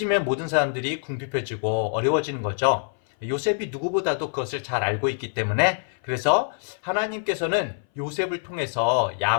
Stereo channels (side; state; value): right; silent; 58 dB below the other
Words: 모든 사람들이 궁핍해지고 어려워지는 거죠. 요셉이 누구보다도 그것을 잘 알고 있기 때문에 그래서 하나님께서는 요셉을 통해서